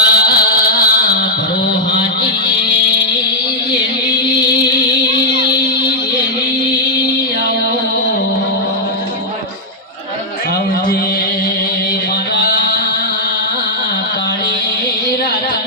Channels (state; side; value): normal; both; correlation -0.07